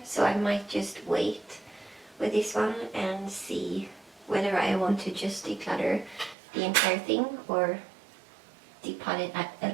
so I might just wait with this one and see whether I want to just declutter the entire thing or depot it at a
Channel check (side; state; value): left; drops out; at 6.4 s